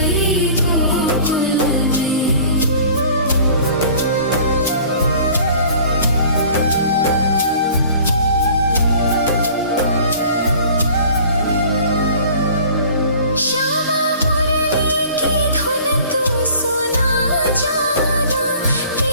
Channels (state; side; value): inverted; both; correlation -0.48